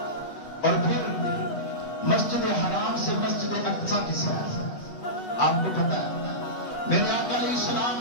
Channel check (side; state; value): right; late; 8.1 ms